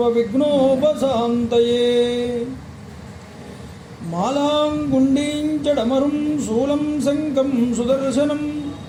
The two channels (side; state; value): both; identical; correlation 1.00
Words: मालां गुण्डीं चडमरुं शूलं शङ्खं सुदर्शनं